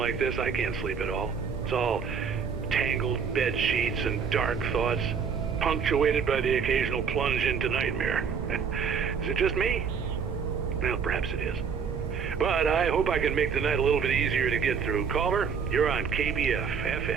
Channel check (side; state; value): left; quieter; 6.4 dB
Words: this, I can't sleep at all. It's all tangled bed sheets and dark thoughts, punctuated by the occasional plunge into nightmare. Is it just me? Well, perhaps it is. But I hope I can make the night a little bit easier to get through. Caller, you're on KBF